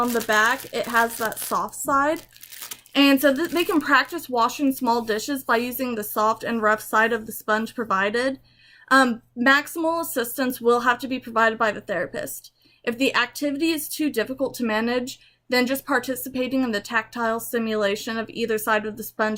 the back it has that soft side. And so they can practice washing small dishes by using the soft and rough side of the sponge provided. Maximal assistance will have to be provided by the therapist. If the activity is too difficult to manage, then just participating in the tactile stimulation of either side of the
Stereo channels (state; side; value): identical; both; correlation 1.00